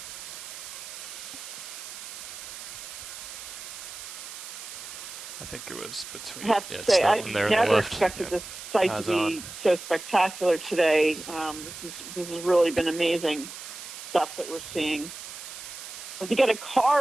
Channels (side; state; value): right; noise; hiss, 11 dB below the sound